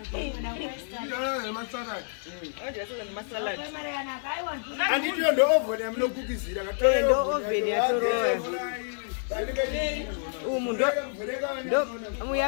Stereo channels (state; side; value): silent; right; digital silence